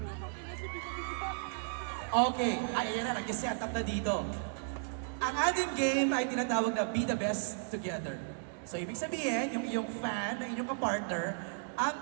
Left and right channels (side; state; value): left; silent; digital silence